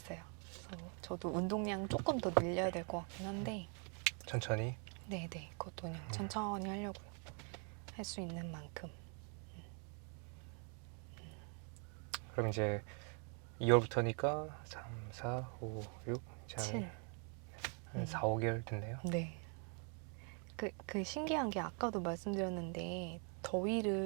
그래서 저도 운동량 조금 더 늘려야 될 것 같긴 한데 천천히? 네네 그것도 그냥 천천히 하려고요. 할 수 있는 만큼. 그럼 이제 2월부터니까 3, 4, 5, 6 이제 7. 한 4, 5개월 됐네요. 네. 그 신기한 게 아까도 말씀드렸는데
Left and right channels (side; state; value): left; quieter; 39.5 dB